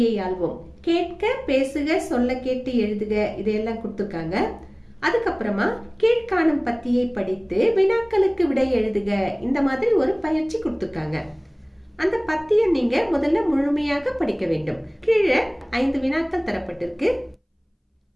ஆள்வோம். கேட்க, பேசுக, சொல்ல கேட்டு எழுதுக இதையெல்லாம் கொடுத்துருக்காங்க. அதுக்கப்புறமா கீழ்காணும் பத்தியை படித்து வினாக்களுக்கு விடை எழுதுக இந்த மாதிரி ஒரு பயிற்சி கொடுத்துருக்காங்க. அந்த பத்தியை நீங்க முதல்ல முழுமையாக படிக்க வேண்டும். கீழே 5 வினாக்கள் தரப்பட்டிருக்கு.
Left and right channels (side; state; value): both; identical; correlation 1.00